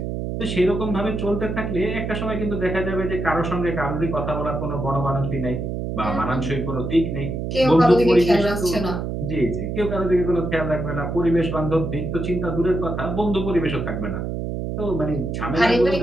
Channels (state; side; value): noise; right; hum, 4 dB below the sound